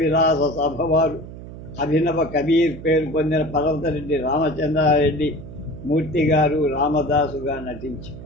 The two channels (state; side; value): noise; right; hum, 13 dB below the sound